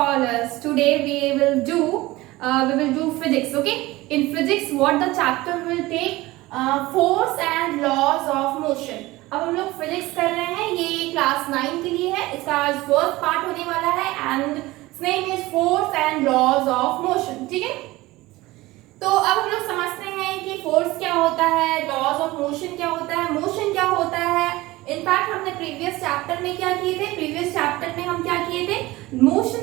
Today we will do physics, okay? In physics what the chapter will take force and laws of motion. अब हम लोग physics कर रहे हैं, ये class 9 के लिए है. इसका आज फर्स्ट पार्ट होने वाला है and its name is force and laws of motion. ठीक है, तो अब हम लोग समझते हैं कि फोर्स क्या होता है, लॉज ऑफ मोशन क्या होता है, मोशन क्या होता है. इनफैक्ट हमने प्रीवियस चैप्टर में क्या किए थे, प्रीवियस चैप्टर में हम क्या किए थे,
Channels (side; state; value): left; quieter; 19.3 dB